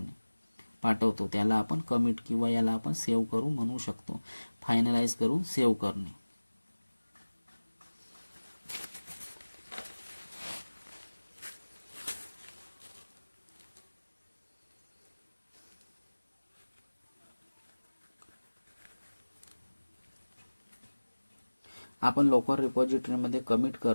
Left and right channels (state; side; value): inverted; both; correlation -1.00